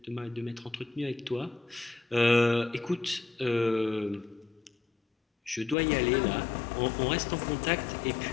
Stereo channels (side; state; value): right; drops out; at 5.8 s